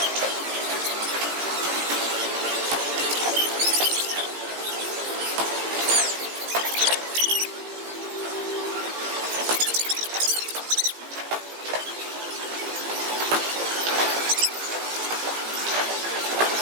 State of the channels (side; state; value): left; late; 17 ms